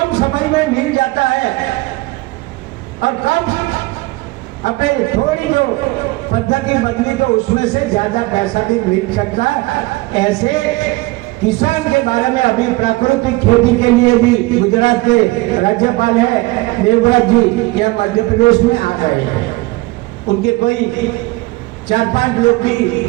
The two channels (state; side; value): quieter; left; 21.6 dB